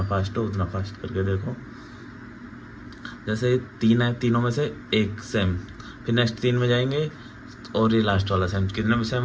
फास्ट हो उतना फास्ट करके देखो। जैसे 3 है, तीनों में से एक सेम, फिर नेक्स्ट 3 में जाएंगे और ये लास्ट वाला सेम, कितने में सेम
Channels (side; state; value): both; identical; correlation 1.00